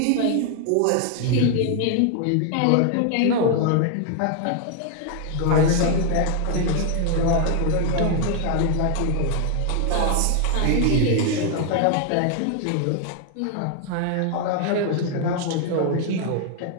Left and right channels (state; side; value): different; both; correlation 0.00